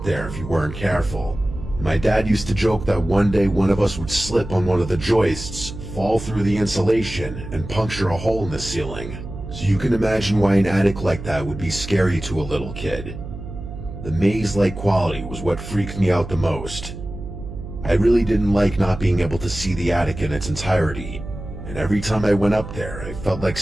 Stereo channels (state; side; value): noise; right; hum, 10 dB below the sound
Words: there if you weren't careful. My dad used to joke that one day one of us would slip on one of the joists, fall through the insulation, and puncture a hole in the ceiling. So you can imagine why an attic like that would be scary to a little kid. The maze-like quality was what freaked me out the most. I really didn't like not being able to see the attic in its entirety, and every time I went up there, I felt like